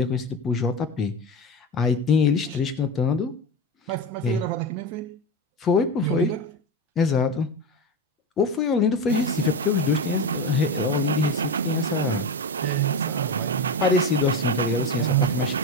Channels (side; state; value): both; normal; correlation 0.21